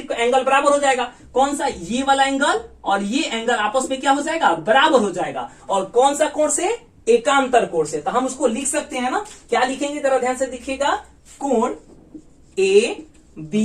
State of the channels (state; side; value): identical; both; correlation 1.00